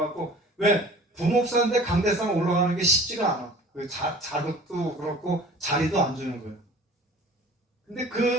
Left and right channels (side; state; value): both; normal; correlation 0.44